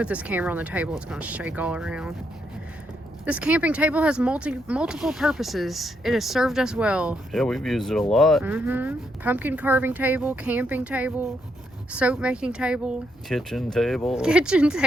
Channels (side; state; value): both; normal; correlation 0.78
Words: this camera on the table, it's gonna shake all around. This camping table has multiple purposes. It has served us well. Yeah, we've used it a lot. Pumpkin carving table, camping table, soap making table, Kitchen table. kitchen